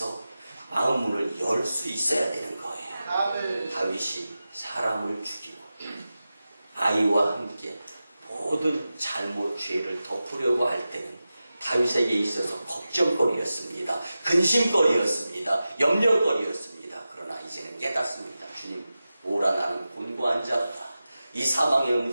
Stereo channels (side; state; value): both; inverted; correlation -0.94